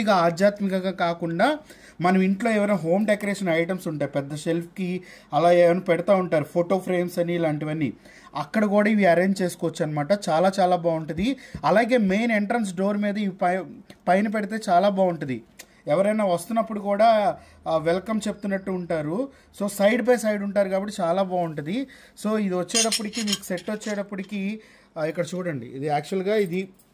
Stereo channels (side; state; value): both; identical; correlation 1.00